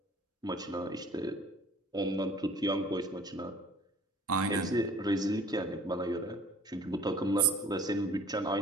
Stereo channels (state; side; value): normal; both; correlation 0.50